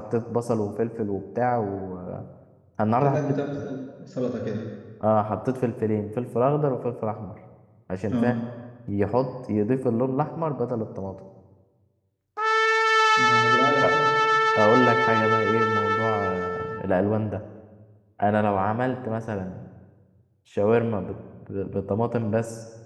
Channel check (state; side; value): identical; both; correlation 1.00